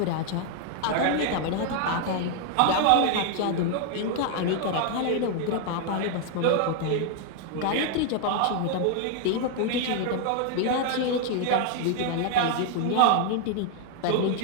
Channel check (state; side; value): different; both; correlation 0.00